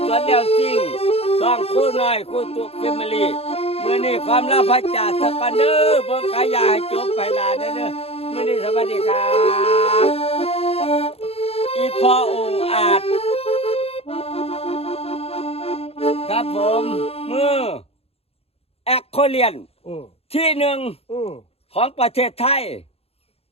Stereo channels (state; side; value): late; right; 0.29 ms